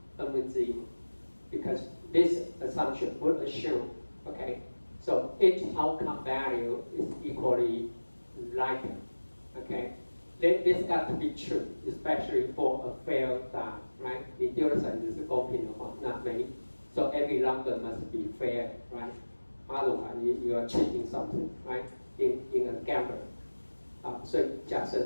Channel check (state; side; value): inverted; both; correlation -1.00